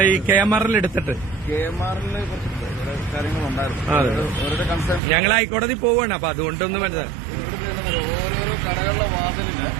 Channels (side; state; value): left; drops out; at 5.0 s